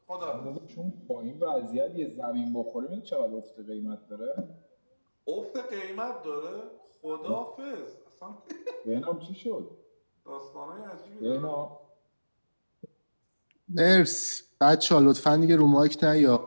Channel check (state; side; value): inverted; both; correlation -1.00